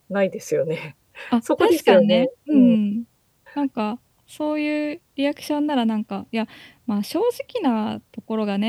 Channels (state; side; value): identical; both; correlation 1.00